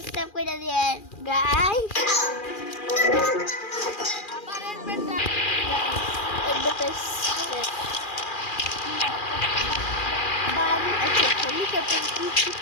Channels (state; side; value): late; right; 2.4 ms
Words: করে দিয়েন গাইস আচ্ছা হেলিকপ্টার কি ঠিক